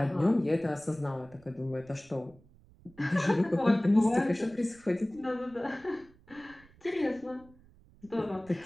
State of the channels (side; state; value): right; noise; rumble, 26 dB below the sound